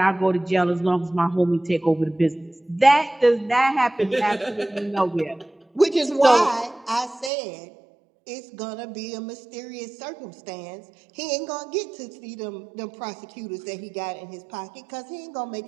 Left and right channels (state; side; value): drops out; left; at 7.3 s